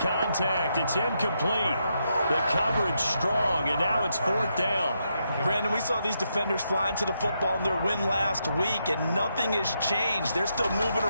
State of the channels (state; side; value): inverted; both; correlation -0.81